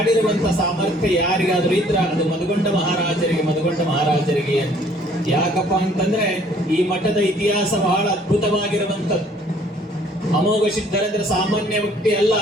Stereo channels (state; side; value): normal; both; correlation 0.59